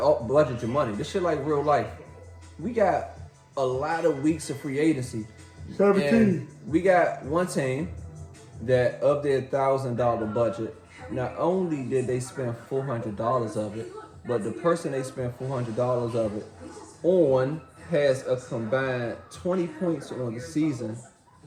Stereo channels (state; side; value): identical; both; correlation 1.00